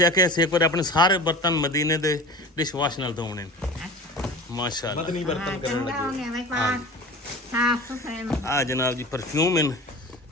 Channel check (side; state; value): both; normal; correlation 0.35